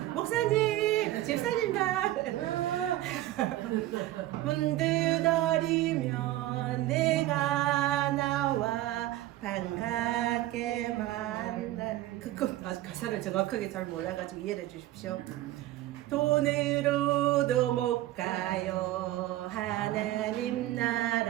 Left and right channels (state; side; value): quieter; left; 15.5 dB